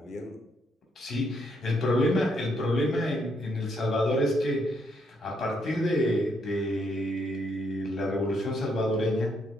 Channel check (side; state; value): both; normal; correlation 0.75